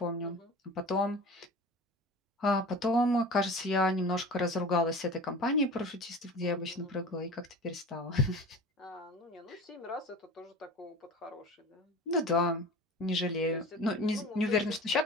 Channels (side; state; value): both; normal; correlation 0.36